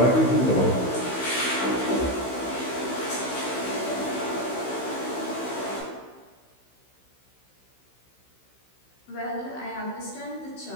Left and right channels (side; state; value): right; late; 16 ms